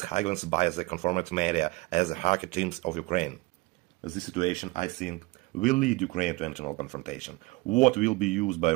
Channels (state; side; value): quieter; left; 22.3 dB